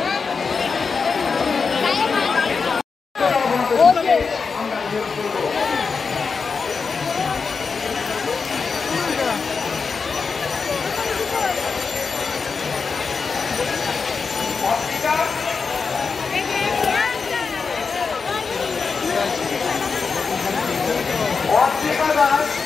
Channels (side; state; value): right; quieter; 5.1 dB